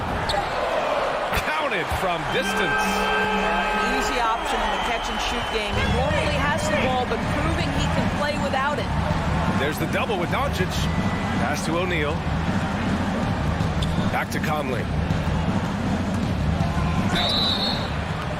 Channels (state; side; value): identical; both; correlation 1.00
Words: Counted from distance. An easy option in the catch-and-shoot game. He normally has the ball, but proving he can play without it. There's the double with Doncic. Pass to O'Neal. Back to Conley.